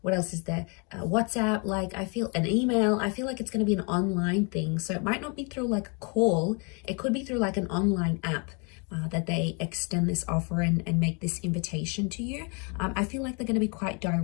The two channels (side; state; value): right; quieter; 34.5 dB